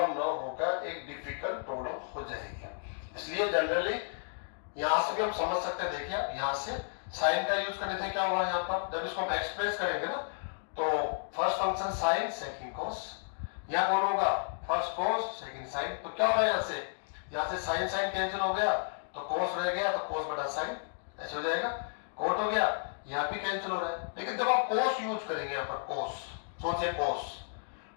ना होकर एक डिफिकल्ट प्रॉब्लम हो जाएगी। इसलिए जनरली यहां से भी हम समझ सकते हैं, देखिए आप यहां से साइन का यूज करने से क्या हुआ, यहाँ पर जब इसको हम एक्सप्रेस करेंगे ना तो फर्स्ट फंक्शन साइन सेकंड कोस, यहाँ कौन होगा फर्स्ट कोस सेकंड साइन, तो क्या होगा यहाँ से साइन साइन कैंसिल हो गया तो कोस रह गया, तो कोस बटा साइन ऐसे हो जाएगा, कोट हो गया, यहाँ भी कैंसिल हो रहा है। लेकिन जब आप कोस यूज करेंगे यहाँ पर कोस, सोचिए कोस,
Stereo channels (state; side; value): silent; right; digital silence